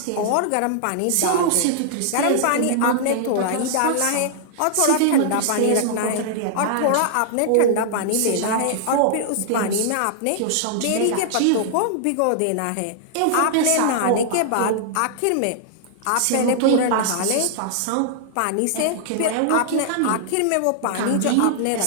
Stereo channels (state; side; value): different; both; correlation -0.01